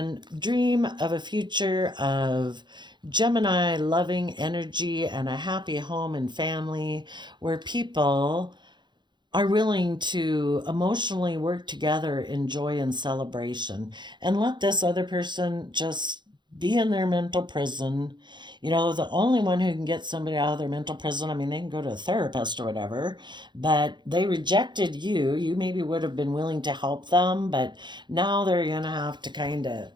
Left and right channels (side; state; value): left; late; 0.22 ms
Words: dream of a future of Gemini loving energy and a happy home and family where people are willing to emotionally work together in joy and celebration, and let this other person just be in their mental prison. You know, the only one who can get somebody out of their mental prison, I mean, they can go to a therapist or whatever, but they rejected you. You maybe would have been willing to help them, but now they're going to have to kind of